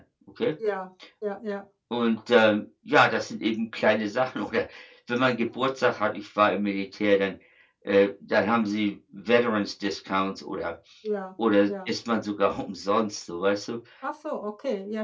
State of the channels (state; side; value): identical; both; correlation 1.00